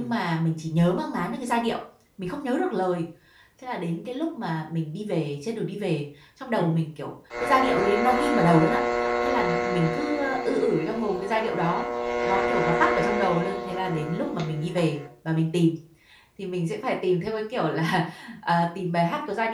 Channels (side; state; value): both; identical; correlation 1.00